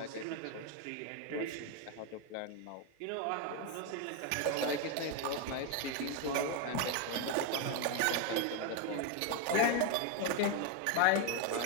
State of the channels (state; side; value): different; both; correlation 0.01